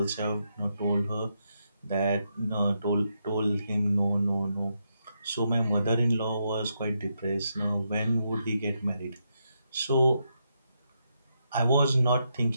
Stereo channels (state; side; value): inverted; both; correlation -0.82